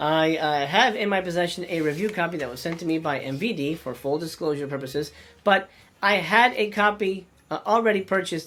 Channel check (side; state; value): both; identical; correlation 1.00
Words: have in my possession a review copy that was sent to me by MVD for full disclosure purposes, but I had a copy already